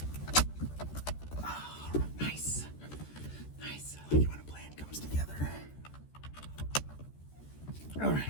Oh, nice. Nice. I like it when a plan comes together. All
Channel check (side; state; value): right; late; 14 ms